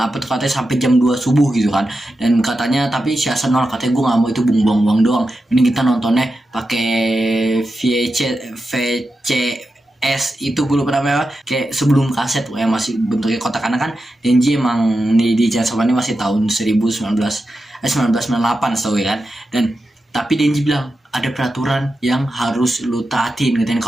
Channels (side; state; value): both; normal; correlation 0.90